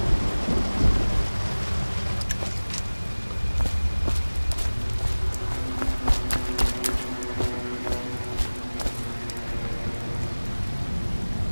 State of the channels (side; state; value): both; inverted; correlation -1.00